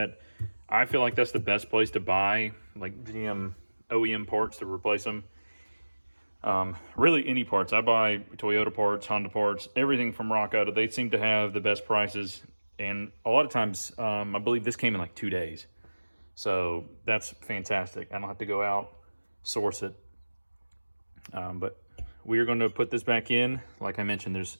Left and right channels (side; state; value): both; inverted; correlation -1.00